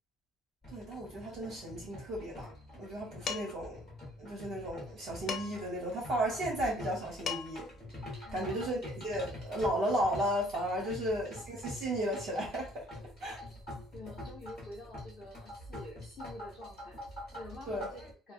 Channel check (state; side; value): normal; both; correlation 0.58